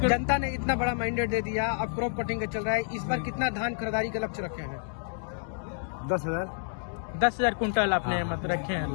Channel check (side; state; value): right; silent; digital silence